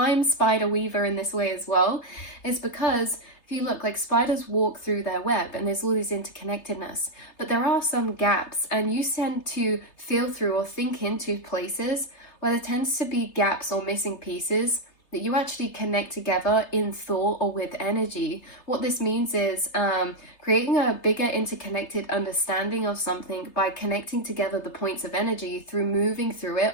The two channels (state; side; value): late; right; 3.3 ms